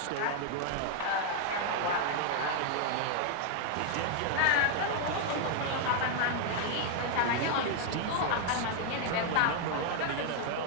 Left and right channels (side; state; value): both; different; correlation 0.00